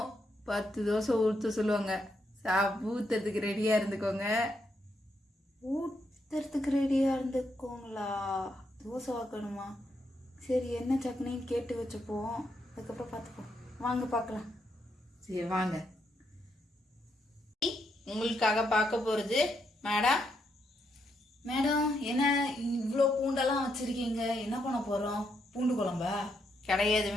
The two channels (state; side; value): normal; both; correlation 0.79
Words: 10 தோசை ஊற்ற சொல்லுவாங்க. ஊத்துறதுக்கு ரெடியாக இருந்துக்கோங்க. ஊற்றுறதுக்கு ரெடியாக இருந்துக்கோங்களா? தோசை வாக்கணுமா? சரி, என்ன சட்னின்னு கேட்டு வச்சுப்போம், அதுக்கப்புறம் பார்த்துப்போம். வாங்க பார்க்கலாம். சரி வாங்க. உங்களுக்காக பார்க்க போகிறது மேடம். மேடம், என்ன இவ்வளோ பூண்டெல்லாம் வச்சுருக்கீங்க? என்ன பண்ண போகிறோம்? பூண்டு குழம்பா? கிடையாது